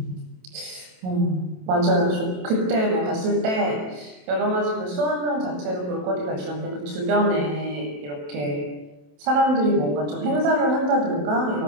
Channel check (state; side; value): late; left; 27 ms